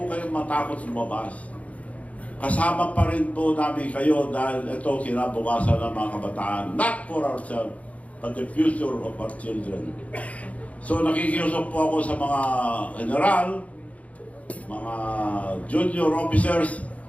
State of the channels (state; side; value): late; right; 0.067 ms